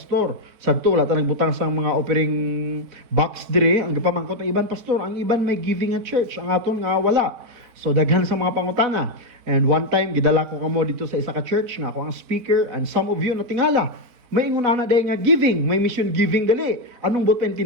Sadto wala ta nagbutang sang mga offering box dire, ang gipamangkot ng iban pastor, ang iban may giving at church, ang aton nga wala. So daghan sa mga pangutana. And one time gidala ko kamo dito sa isa ka church nga ako ang speaker, and some of you natingala. May ingon ana day nga giving, may mission giving gali. Anong buot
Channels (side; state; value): left; late; 4.3 ms